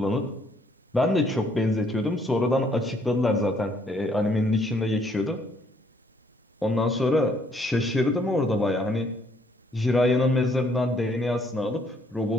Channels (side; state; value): both; normal; correlation 0.66